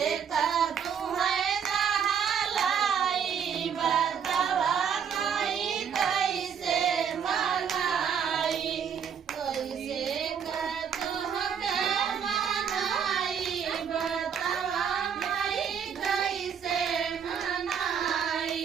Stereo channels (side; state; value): left; quieter; 7.5 dB